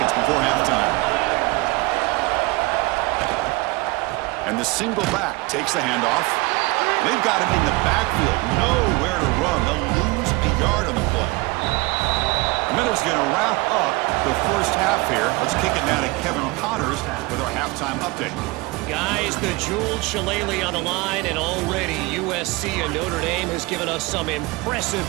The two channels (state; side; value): quieter; left; 23.5 dB